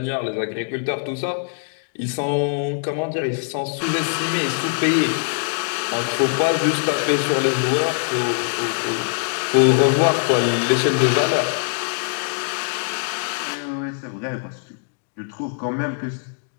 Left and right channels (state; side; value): silent; right; digital silence